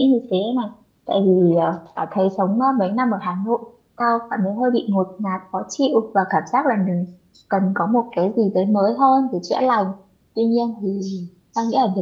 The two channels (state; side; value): identical; both; correlation 1.00